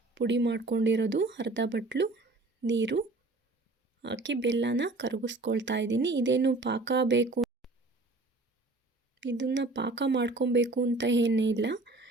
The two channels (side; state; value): left; quieter; 3.1 dB